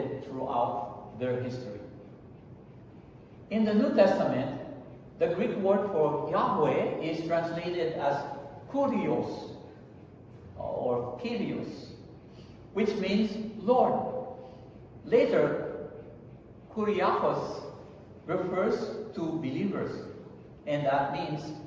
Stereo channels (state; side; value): identical; both; correlation 1.00